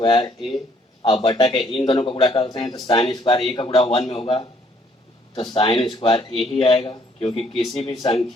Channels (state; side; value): normal; both; correlation 0.65